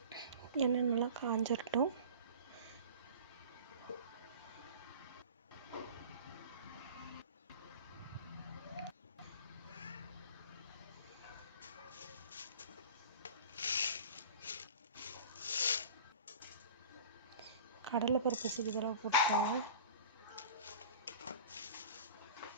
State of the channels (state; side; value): inverted; both; correlation -0.38